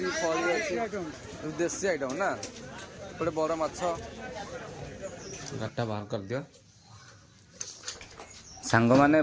ଫଳି ଅଛି, ଦେଶୀ ଆଇଟମ୍ ନା। ଗୋଟେ ବଡ଼ ମାଛ ଗାଡ଼ିଟା ବାହାର କରିଦିଅ। ସାଙ୍ଗମାନେ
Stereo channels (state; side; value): identical; both; correlation 1.00